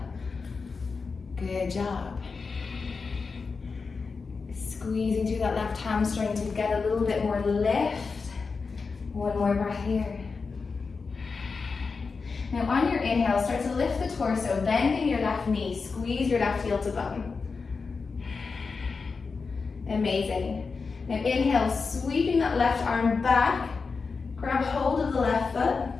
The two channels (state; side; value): quieter; right; 4.7 dB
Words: Good job. Squeezing through that left hamstring to get a little bit more lift. One more breath here. Now on your inhale, start to lift the torso, bending your left knee. Squeeze your left heel to bum. Amazing. Now inhale, sweeping that left arm back. Grab hold of the left foot.